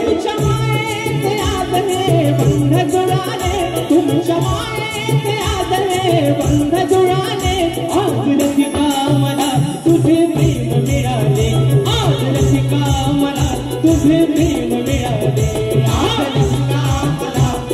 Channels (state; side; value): identical; both; correlation 1.00